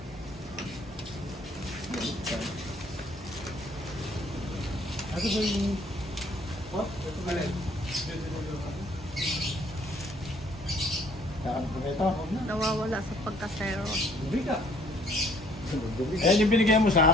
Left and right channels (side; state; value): both; normal; correlation 0.61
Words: Ano ba yung... What? Ito ba rin? Saan po ito? Nawawala sa pagka-zero. Hindi ka. Eh, yung binigay mo